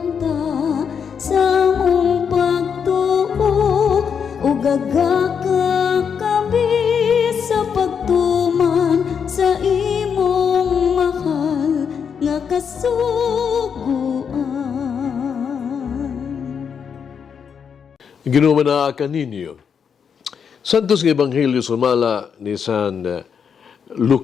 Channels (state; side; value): quieter; right; 6.9 dB